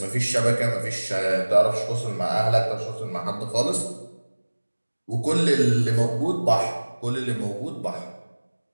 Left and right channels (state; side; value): inverted; both; correlation -1.00